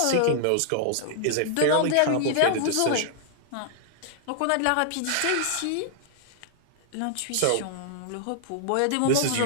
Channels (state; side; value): different; both; correlation -0.01